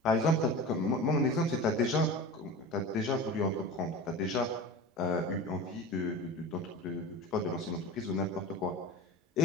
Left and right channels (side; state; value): both; normal; correlation 0.32